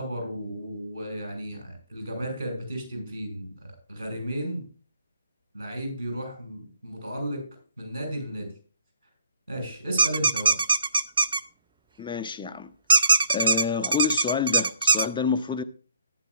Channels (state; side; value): inverted; both; correlation -0.63